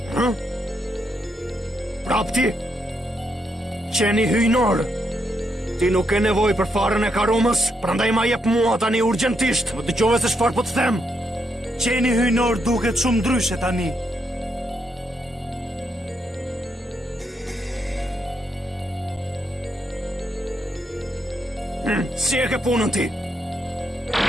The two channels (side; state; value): both; normal; correlation 0.79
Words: Kapti, qeni hyjnor. Ti nuk e nevoj për farën e karumës, prandaj ma jep mua tani urgjentisht. Më dëgjove se çfarë po të them. Qeni hyjnor duket shumë ndryshe tani. Si e ke punën ti?